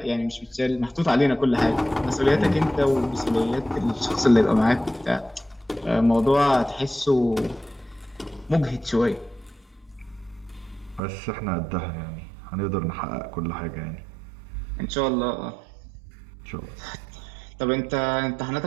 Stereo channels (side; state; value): left; drops out; at 11.0 s